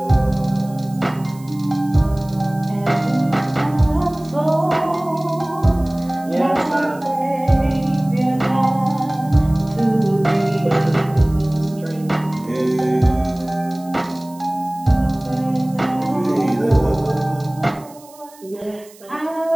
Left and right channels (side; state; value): right; noise; hiss, 24 dB below the sound